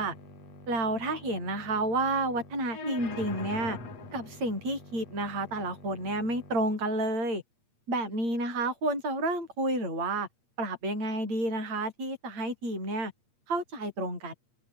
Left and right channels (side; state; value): left; late; 8.6 ms